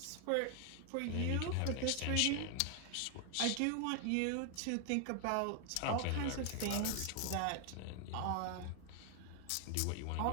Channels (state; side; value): different; both; correlation 0.00